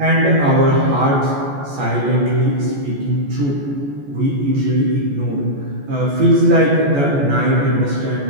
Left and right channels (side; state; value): left; late; 14 ms